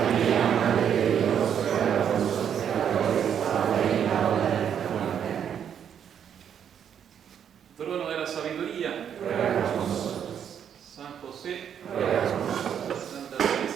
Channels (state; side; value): quieter; left; 8.6 dB